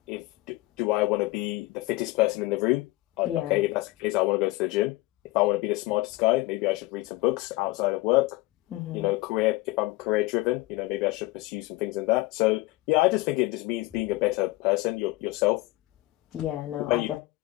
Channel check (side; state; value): right; quieter; 20.1 dB